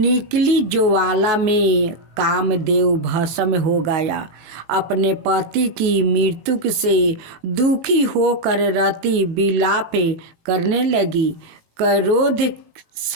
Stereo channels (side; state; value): left; late; 18 ms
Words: ज्वाला में कामदेव भस्म हो गया। अपने पति की मृत्यु से दुखी होकर रति विलाप करने लगी। क्रोध